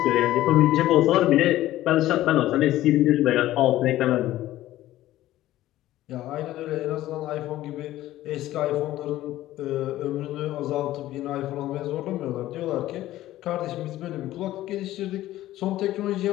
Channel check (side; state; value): right; quieter; 14.8 dB